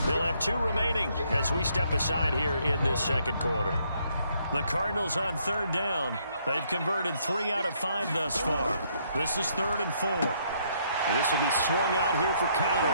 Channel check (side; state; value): both; inverted; correlation -0.70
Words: They'll have 2 remaining as we step aside here in this second quarter. The Cardinals on 3rd down. They've converted 3 out of 5 thus far. This is 3rd and 4. And this will be swung out here for